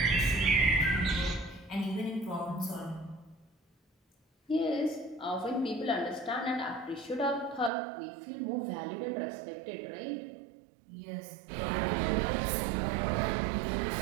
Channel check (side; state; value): left; drops out; at 7.7 s